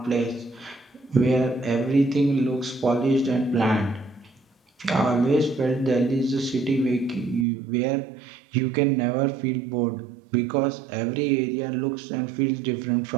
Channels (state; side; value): drops out; left; at 7.5 s